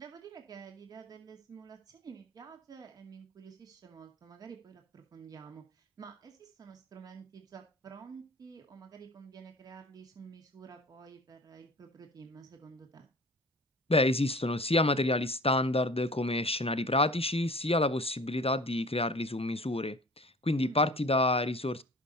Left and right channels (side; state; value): both; normal; correlation 0.44